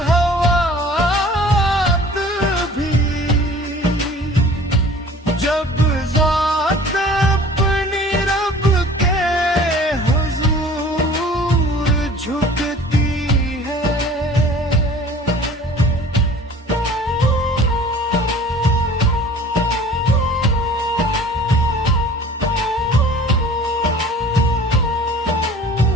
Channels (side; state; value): both; normal; correlation 0.47